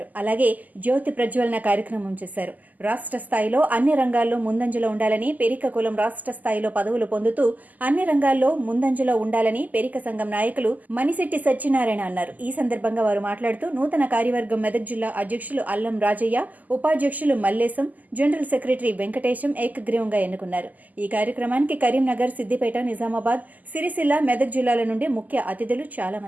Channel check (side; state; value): left; late; 0.081 ms